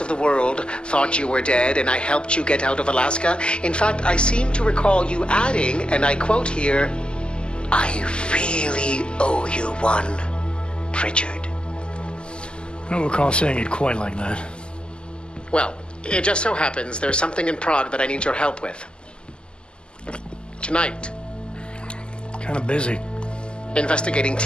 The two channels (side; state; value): right; late; 0.049 ms